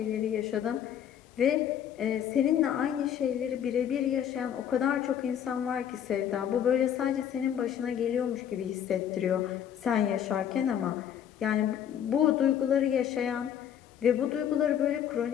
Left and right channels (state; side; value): quieter; right; 9.4 dB